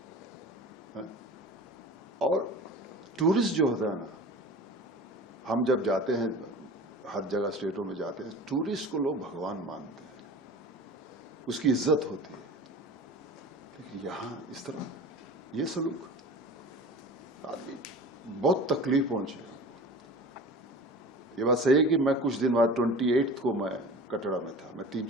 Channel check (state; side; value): normal; both; correlation 0.38